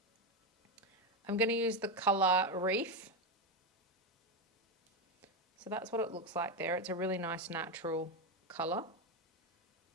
I'm going to use the colour Reef. So that's what it looks like there. It's a really nice natural colour.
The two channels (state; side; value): normal; both; correlation 0.11